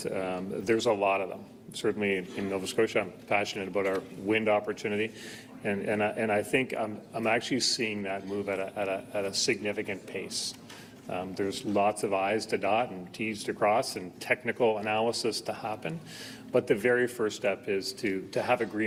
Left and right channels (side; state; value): both; identical; correlation 1.00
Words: there's a lot of them. Certainly in Nova Scotia, I'm passionate about our wind opportunity, and I think I'm actually seeing that move at a significant pace. There's lots of I's to dot and T's to cross and technical analysis to happen, but the very first step is to have